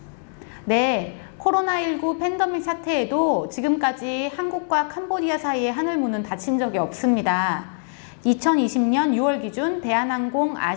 네, 코로나19 팬데믹 사태에도 지금까지 한국과 캄보디아 사이의 하늘문은 닫힌 적이 없습니다. 2020년 6월 기준 대한항공,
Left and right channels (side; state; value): right; silent; digital silence